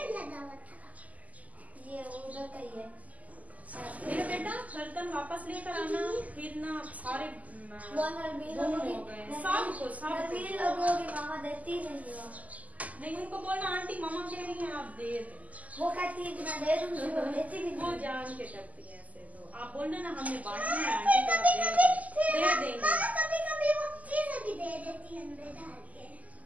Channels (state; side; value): late; left; 0.075 ms